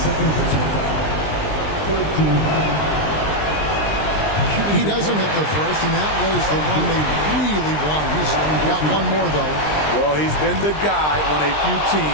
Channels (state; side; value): late; right; 20 ms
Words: second personal foul. Third team foul. He doesn't hit the first, and that was the one they really won. He's got one more, though. Well, he's been the guy on a few